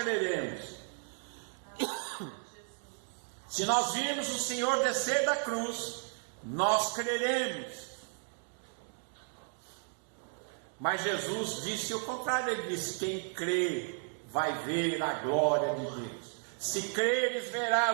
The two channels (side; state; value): left; silent; 55 dB below the other